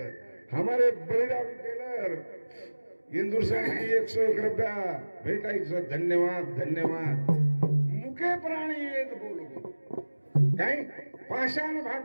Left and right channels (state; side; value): inverted; both; correlation -1.00